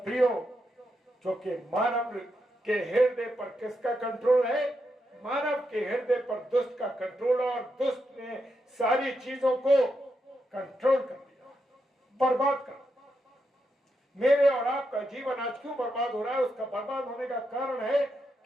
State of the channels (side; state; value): both; normal; correlation 0.84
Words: क्योंकि मानव के हृदय पर किसका कंट्रोल है? मानव के हृदय पर दुष्ट का कंट्रोल, और दुष्ट ने सारी चीजों को कंट्रोल कर दिया, बर्बाद कर। मेरे और आपका जीवन आज क्यों बर्बाद हो रहा है? उसका बर्बाद होने का कारण है